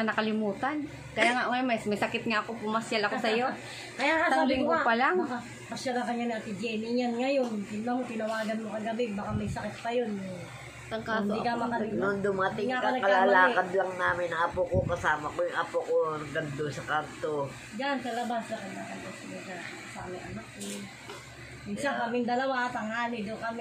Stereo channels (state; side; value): identical; both; correlation 1.00